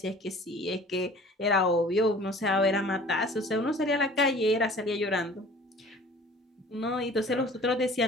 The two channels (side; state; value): both; normal; correlation 0.47